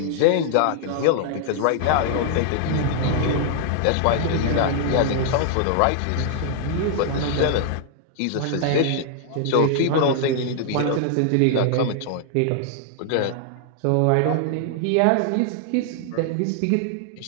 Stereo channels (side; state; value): both; different; correlation -0.01